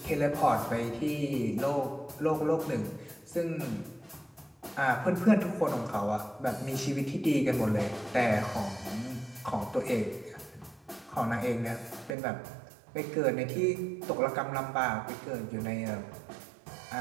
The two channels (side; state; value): left; drops out; at 12.2 s